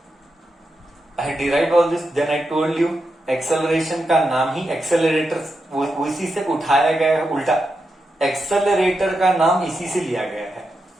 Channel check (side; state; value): both; normal; correlation 0.87